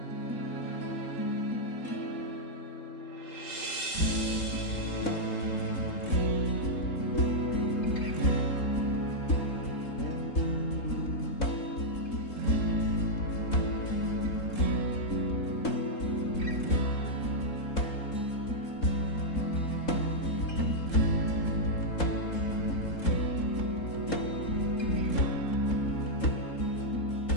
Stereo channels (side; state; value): right; late; 3.7 ms